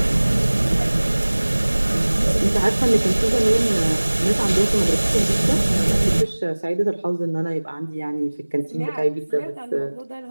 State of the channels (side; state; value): both; inverted; correlation -1.00